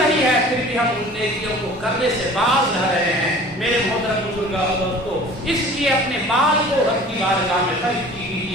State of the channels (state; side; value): normal; both; correlation 0.45